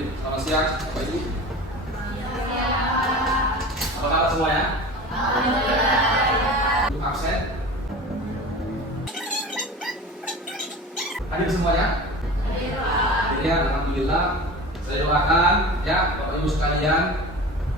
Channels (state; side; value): normal; both; correlation 0.35